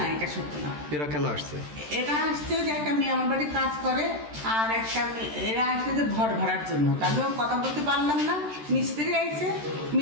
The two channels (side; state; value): left; late; 13 ms